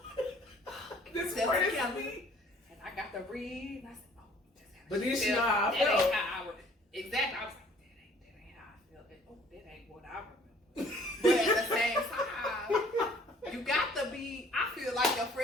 This That's part is Kelly. me. And I got to read, and I said, oh, that's how But she then she felt. know how I That felt. ain't how I would. Exactly. I was like, that ain't how I felt. Oh, that ain't what I remember. But at the same time, you got to be, I feel like your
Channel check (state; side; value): normal; both; correlation 0.56